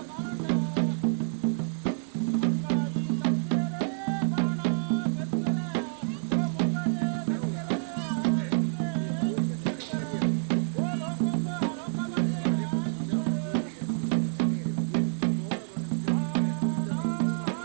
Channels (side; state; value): left; silent; 59 dB below the other